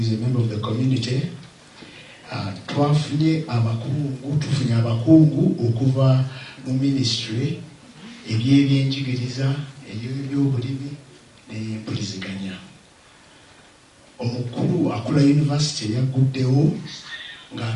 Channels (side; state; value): both; identical; correlation 1.00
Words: a member of the community. Tufunye abakungu okuva mu ministry ebyebyenjigiriza, ebyobulimi n'empuliziganya. Omukulu akula university yaguddewo